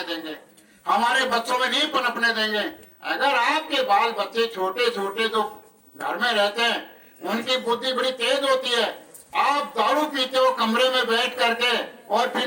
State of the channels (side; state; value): both; identical; correlation 1.00